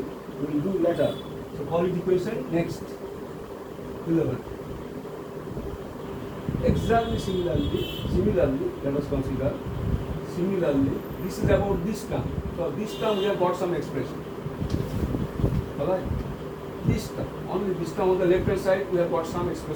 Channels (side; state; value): both; identical; correlation 1.00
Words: We will do later. So call it equation next 11. Exactly similarly, let us consider. Similarly, this is about this term. So this term we have got some expression. Alright? This term, only this term on the left hand side we have got some